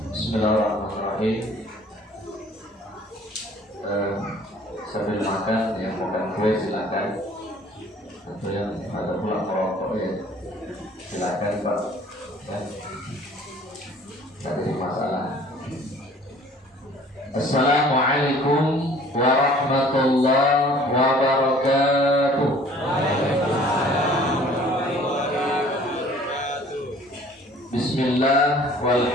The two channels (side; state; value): both; normal; correlation 0.52